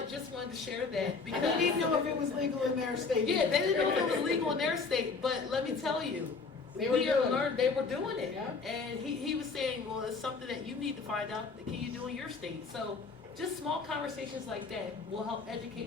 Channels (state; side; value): quieter; right; 4.5 dB